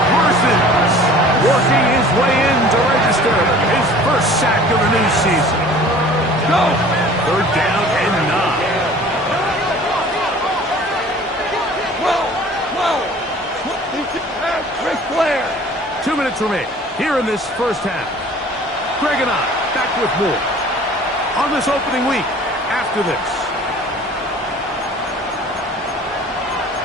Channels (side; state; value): both; normal; correlation 0.47